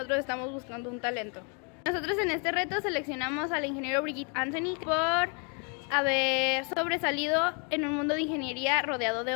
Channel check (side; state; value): right; quieter; 37.3 dB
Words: estamos buscando un talento. Nosotros en este reto seleccionamos al ingeniero Brigitte Anthony por haber sobresalido en un mundo de ingeniería rodeado